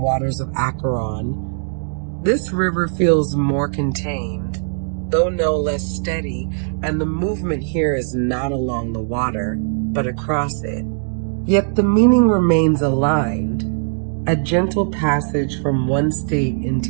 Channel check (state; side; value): silent; left; digital silence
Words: of Acheron, this river feels more contained, though no less steady, and the movement here is not along the water, but across it. Yet the meaning remains aligned, a gentle passage from one state